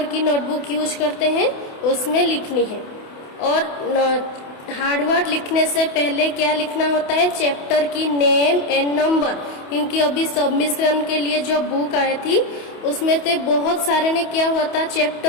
की नोटबुक यूज करते हैं, उसमें लिखनी है। और हार्ड वर्ड लिखने से पहले क्या लिखना होता है, चैप्टर की नेम एंड नंबर, क्योंकि अभी सबमिशन के लिए जो बुक आई थी उसमें से बहुत सारे ने क्या हुआ था,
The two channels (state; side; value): late; right; 28 ms